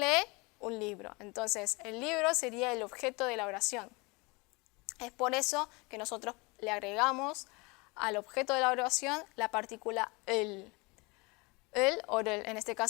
Un libro. Entonces, el libro sería el objeto de la oración. Es por eso que nosotros le agregamos al objeto de la oración la partícula el. El o el, en este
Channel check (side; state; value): right; quieter; 27.1 dB